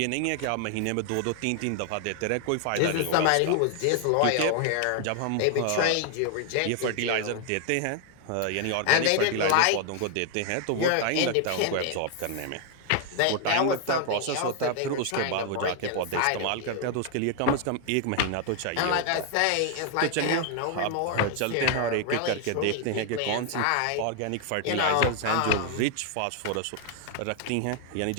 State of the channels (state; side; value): different; both; correlation 0.00